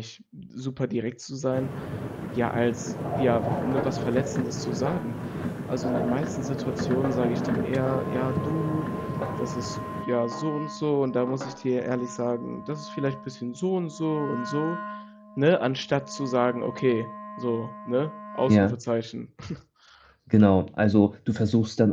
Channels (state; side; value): identical; both; correlation 1.00